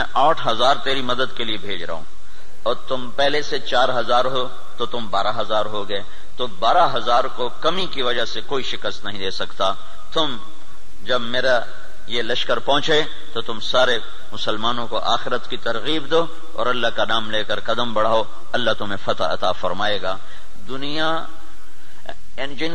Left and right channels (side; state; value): both; identical; correlation 1.00